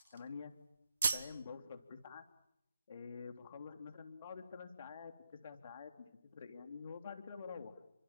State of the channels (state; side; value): inverted; both; correlation -0.81